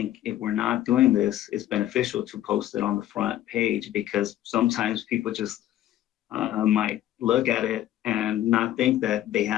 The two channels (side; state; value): right; quieter; 13.0 dB